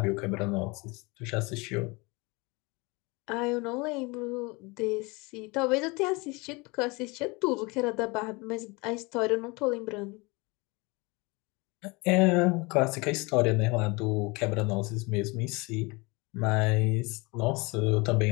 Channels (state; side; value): quieter; right; 26.4 dB